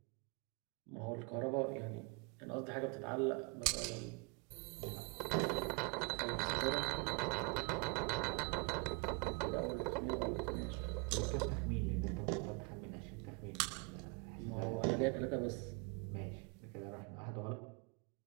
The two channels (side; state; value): left; quieter; 30.5 dB